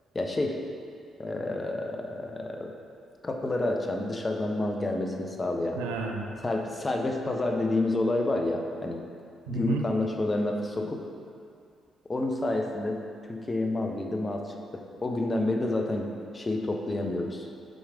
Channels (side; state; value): both; normal; correlation 0.86